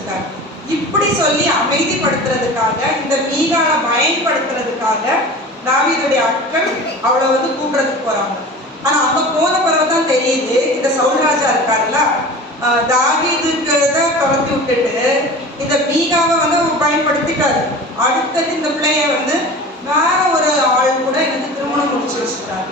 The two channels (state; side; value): normal; both; correlation 0.36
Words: இப்படி சொல்லி அமைதிப்படுத்துறதுக்காக இந்த மீகாவை பயன்படுத்துறதுக்காக தாவீதுடைய ஆட்கள் அவளை வந்து கூப்பிடுறதுக்கு போறாங்க. ஆனா அங்க போன பிறகுதான் தெரியுது, இந்த சவுல் ராஜா இருக்காருல்ல, தாவீதுக்கு தான் துரத்தி விட்டுட்டு இந்த மீகாவை வந்து பயன்படுத்திட்டாரு. அடுத்தது இந்த பிள்ளைய வந்து வேற ஒரு ஆள் கூட எனக்கு திருமணம் முடிச்சு வச்சுட்டாரு.